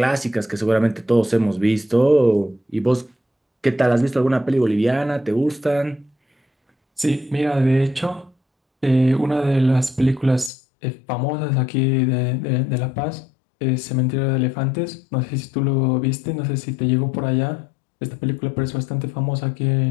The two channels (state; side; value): drops out; right; at 10.5 s